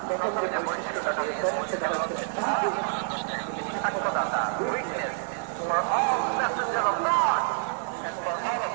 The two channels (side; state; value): left; silent; digital silence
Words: প্রথম যে বৈশিষ্ট্যটা দিয়েছেন সেটা হচ্ছে সাক্ষ্যদাতা, witness for all messenger of God and for all of